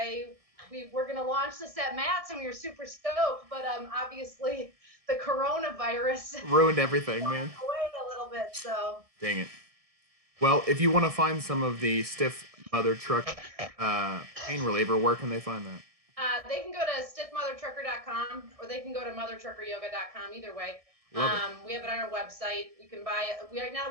we're going to launch this at Matt's, and we were super stoked. But obviously, the coronavirus ruined everything, man. Away a little bit, so. Dang it. Well, if you want to find some of the Stiff Mother Truck pain reliever, where can they find that? They can go to stiffmothertrucker.com, or they can go to mothertruckeryoga.com. Either way, we have it on our website. You can buy it. Right now,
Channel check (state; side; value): late; left; 1.6 ms